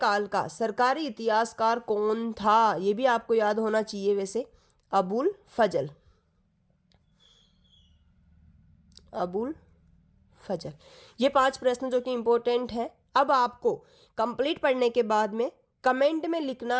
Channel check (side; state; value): both; identical; correlation 1.00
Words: का सरकारी इतिहासकार कौन था? ये भी आपको याद होना चाहिए वैसे। अबुल फजल। अबुल फजल। ये 5 प्रश्न जो कि इंपॉर्टेंट हैं। अब आपको कंप्लीट पढ़ने के बाद में कमेंट में